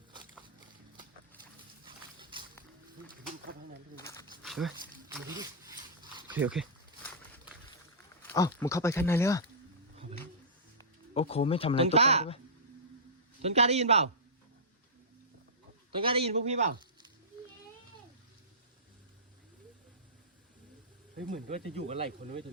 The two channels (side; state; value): both; normal; correlation -0.18